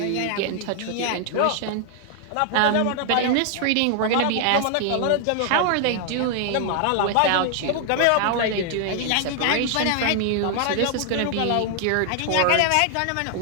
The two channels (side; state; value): both; different; correlation 0.00